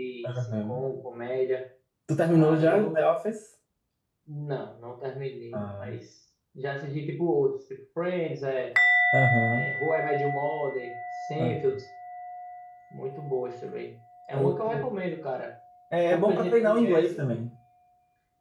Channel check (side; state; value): both; identical; correlation 1.00